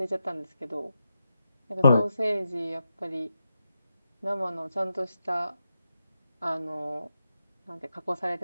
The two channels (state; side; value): inverted; both; correlation -0.87